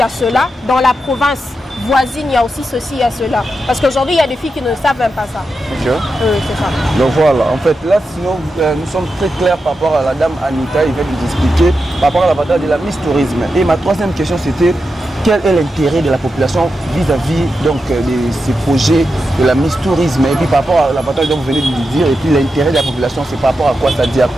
a cela. Dans la province voisine, il y a aussi ceci, il y a cela. Parce qu'aujourd'hui, il y a des filles qui ne savent même pas ça. C'est ça. Donc voilà, en fait, là, sinon, nous sommes très clairs par rapport à la dame Anita, il vient de nous expliquer par rapport à l'avantage de la Miss Tourisme. Et ma troisième question, c'était quel est l'intérêt de la population vis-à-vis donc de ces projets de la Miss Tourisme? Et puis par rapport à l'avantage dont vous venez de nous dire, et puis l'intérêt de la population, c'est par rapport à quoi? Ça dit à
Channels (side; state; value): both; normal; correlation 0.88